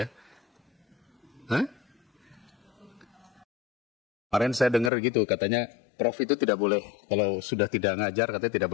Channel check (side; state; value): right; drops out; at 4.9 s